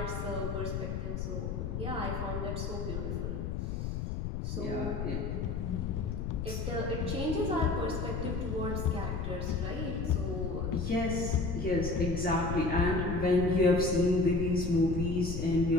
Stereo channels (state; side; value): noise; left; rumble, 3 dB below the sound